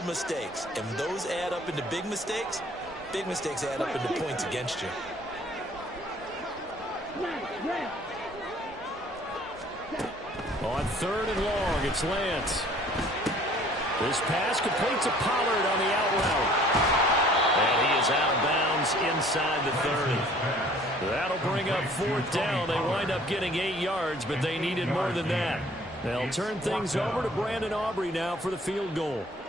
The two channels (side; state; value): both; normal; correlation 0.54